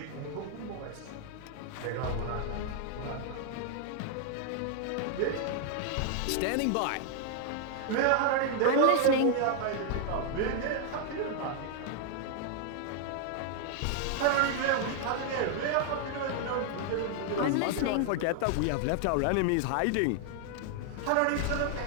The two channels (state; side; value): different; both; correlation 0.00